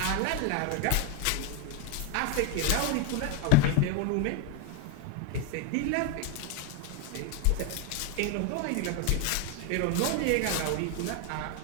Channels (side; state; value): both; different; correlation 0.01